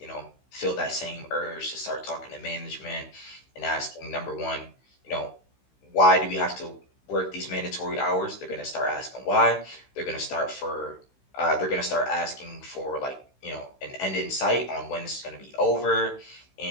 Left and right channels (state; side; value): late; right; 15 ms